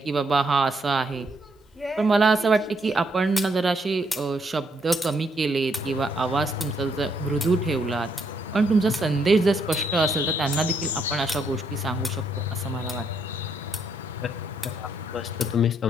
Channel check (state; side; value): normal; both; correlation 0.74